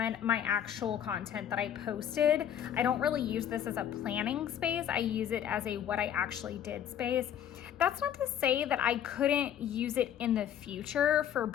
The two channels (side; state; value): right; quieter; 9.8 dB